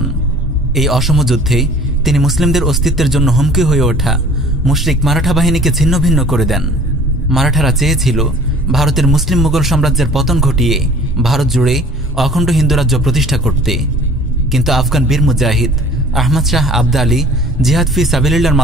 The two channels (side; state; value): both; normal; correlation 0.49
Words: এই অসম যুদ্ধে তিনি মুসলিমদের অস্তিত্বের জন্য হুমকি হয়ে ওঠা মুশরিক মারাঠা বাহিনীকে ছিন্ন ভিন্ন করে দেন। মারাঠারা চেয়েছিল ভারতের মুসলিম মুঘল সাম্রাজ্যের পতন ঘটিয়ে ভারত জুড়ে অখণ্ড হিন্দু রাজ্য প্রতিষ্ঠা করতে। কিন্তু আফগান বীর মুজাহিদ আহমদ শাহ আবদালী জিহাদ ফি সাবিলিল্লাহর